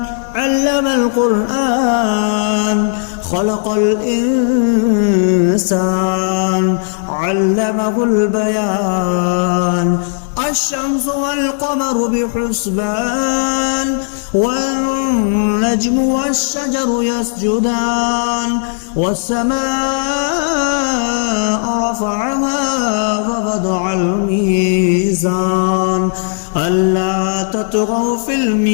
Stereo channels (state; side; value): silent; right; digital silence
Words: علم القرآن خلق الإنسان علمه البيان. الشمس والقمر بحسبان والنجم والشجر يسجدان والسماء رفعها ووضع الميزان ألا تطغوا في